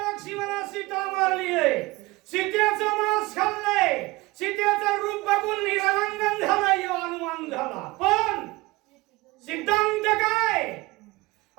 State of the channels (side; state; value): left; quieter; 21.9 dB